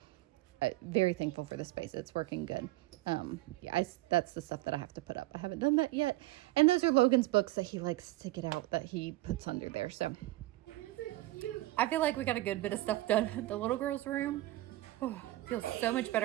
very thankful for the space. It's working good. Yeah, that's the stuff that I have to put up. I haven't done that yet. And those are Logan's books that he likes to get out that he puts under there. So I feel like we got a good bit of stuff done. The little girl's room, feels so much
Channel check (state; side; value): quieter; left; 17.7 dB